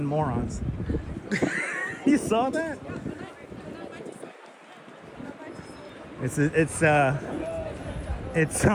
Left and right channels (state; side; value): identical; both; correlation 1.00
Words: morons. You saw that?